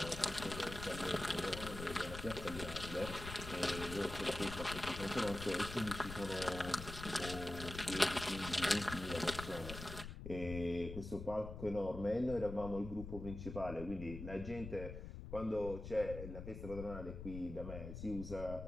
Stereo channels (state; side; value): noise; left; rumble, 8 dB below the sound